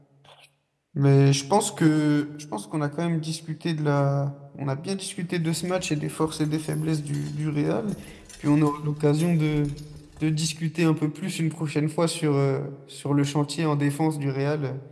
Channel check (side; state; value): both; identical; correlation 1.00